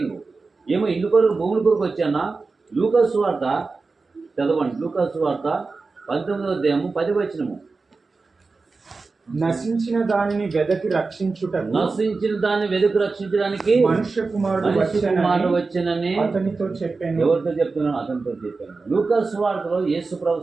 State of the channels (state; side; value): quieter; left; 4.1 dB